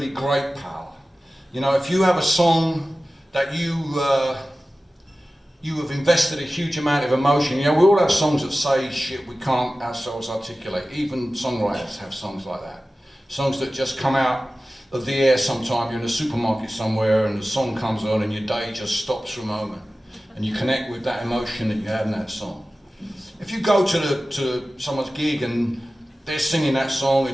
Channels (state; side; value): normal; both; correlation 0.96